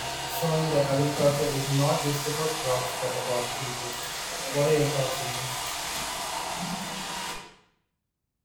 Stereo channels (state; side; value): identical; both; correlation 1.00